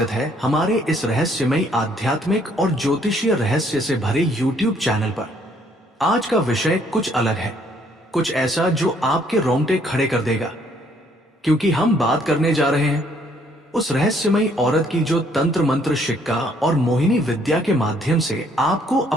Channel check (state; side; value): normal; both; correlation 0.65